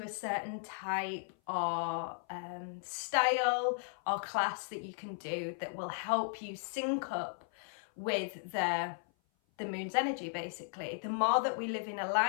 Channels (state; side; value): silent; right; 54 dB below the other